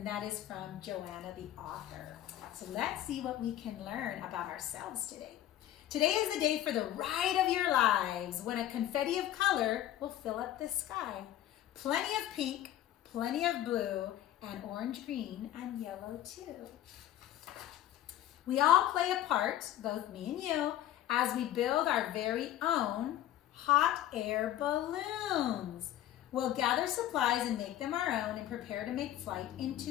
that is from Joanna, the author. So let's see what we can learn about ourselves today. Today is the day for the ride of your lives, when a confetti of color will fill up the sky. Plenty of pink, plenty of blue, and orange, green, and yellow too. We all play a part, both me and you, as we build our very own hot air balloons. We'll gather supplies and make them our own and prepare to make flight into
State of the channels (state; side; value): quieter; right; 12.6 dB